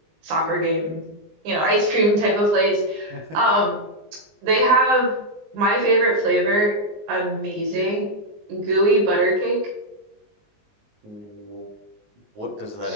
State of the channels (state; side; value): late; left; 19 ms